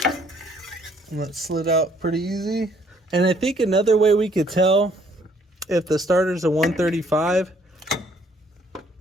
And that slid out pretty easy. And I think another way we could tell if the starter's a 135,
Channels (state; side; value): normal; both; correlation 0.64